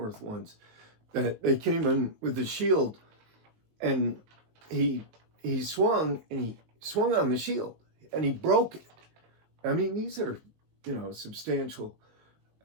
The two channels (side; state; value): left; late; 19 ms